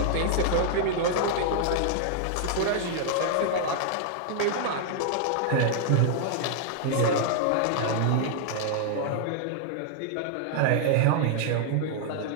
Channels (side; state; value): both; different; correlation -0.01